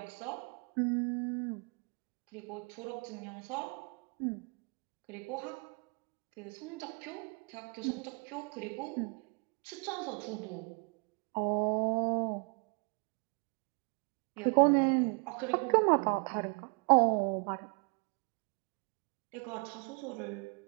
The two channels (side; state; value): left; quieter; 34.5 dB